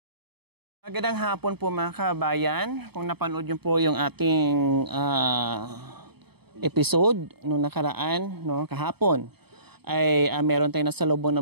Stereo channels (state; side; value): late; left; 0.97 ms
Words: Magandang hapon po mga kabayan. Kung napanood nyo po yung ating episode nung nakaraan, no, kahapon, ay meron tayong nasalubong na